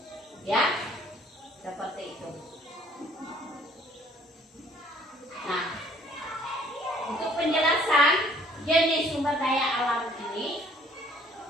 Ya, seperti itu. Nah, untuk penjelasan jenis sumber daya alam ini,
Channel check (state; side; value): normal; both; correlation 0.59